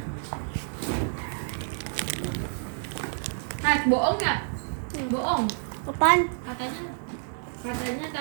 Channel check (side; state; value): left; silent; 59 dB below the other